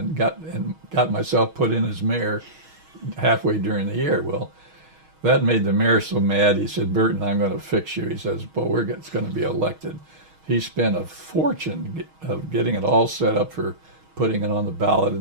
got myself put in as mayor halfway during the year. Well, that made the mayor so mad. He said, Burton, I'm going to fix you. He says, but it's going to be elected. He spent a fortune of getting it all set up for putting it on the ballot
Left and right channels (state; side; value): late; left; 6.3 ms